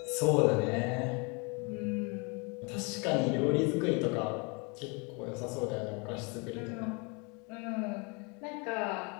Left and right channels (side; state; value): right; quieter; 31.5 dB